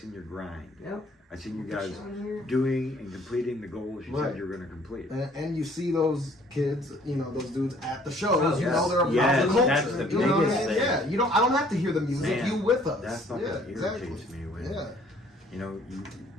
your grind. Yep. I seen you guys doing and completing the goals you said you were going to complete. And you see those kids, those dudes at the shows. They're a part of the culture. That's the biggest thing. Yeah, I don't have to hear the music. Man, you with us. That fucking irritates me when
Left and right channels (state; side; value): normal; both; correlation 0.58